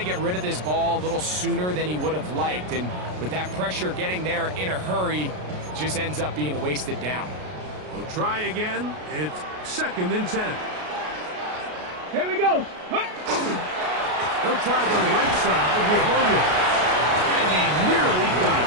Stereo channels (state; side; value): late; left; 33 ms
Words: get rid of this ball a little sooner than he would have liked. And with that pressure getting there in a hurry, just ends up being a wasted down. We'll try again. It's 2nd and 10. Here we go. He'll try the right side with Williams. And he nearly got